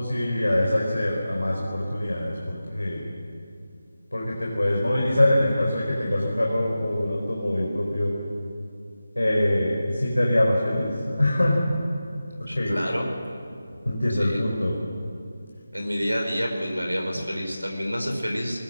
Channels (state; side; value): inverted; both; correlation -0.95